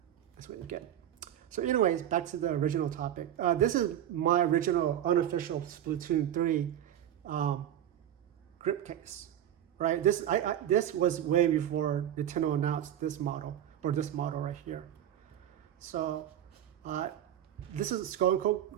That's what you get. So anyways, back to the original topic. This is my original unofficial Splatoon 3 grip case, right? This was way before Nintendo announced this model, or this model right here. So this is Skull Co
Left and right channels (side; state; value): left; quieter; 11.0 dB